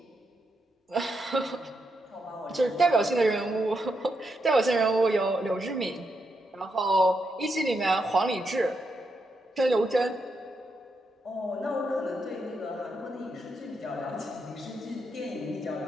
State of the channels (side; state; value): both; normal; correlation 0.82